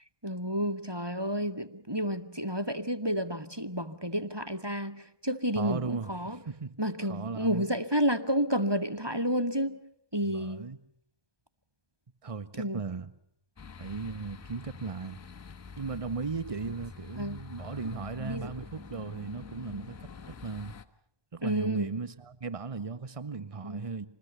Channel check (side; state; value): left; late; 1.2 ms